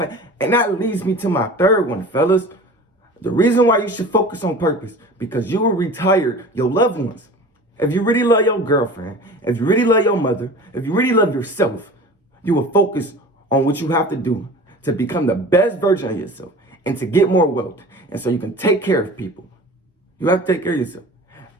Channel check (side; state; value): both; normal; correlation 0.39